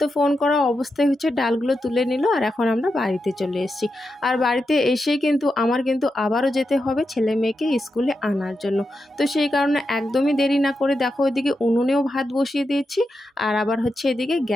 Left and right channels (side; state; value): both; normal; correlation 0.87